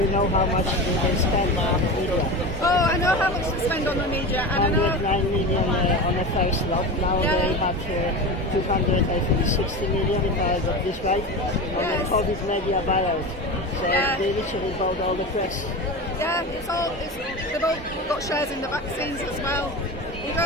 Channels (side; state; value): both; normal; correlation 0.26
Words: know how much they spend on the media? Oh, I know how much they spend on the media, and I know 109 million on the first lot. Now they have 260 million, if I got this right, on the COVID media buyout. So they literally bought all the press. Yeah, they've all got shares in the vaccines as well. You